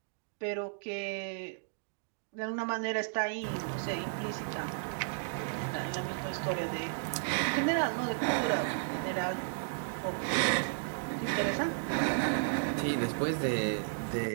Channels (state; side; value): silent; left; digital silence